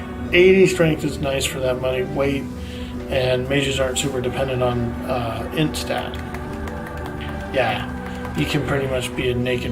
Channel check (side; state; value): both; identical; correlation 1.00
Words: 80 strength is nice for that money, weight, and mages aren't super dependent on int stat. Yeah, you can pretty much be a